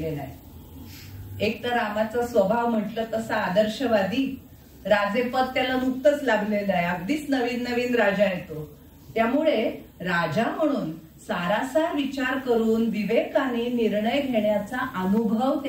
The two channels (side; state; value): both; identical; correlation 1.00